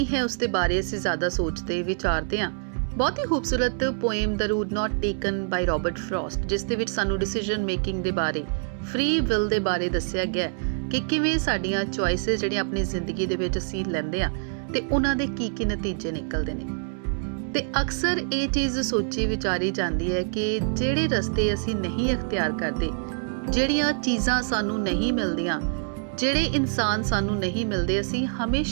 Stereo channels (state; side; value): silent; left; 61 dB below the other